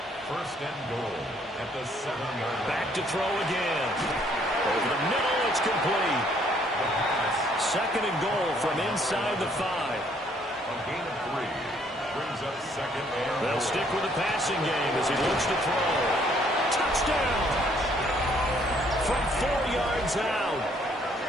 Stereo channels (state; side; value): normal; both; correlation 0.65